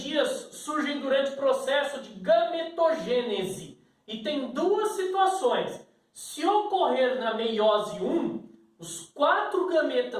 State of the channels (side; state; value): both; identical; correlation 1.00